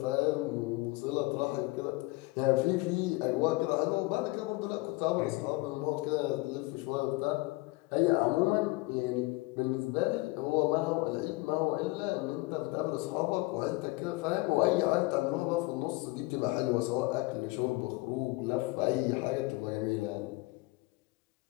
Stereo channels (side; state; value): right; quieter; 22.6 dB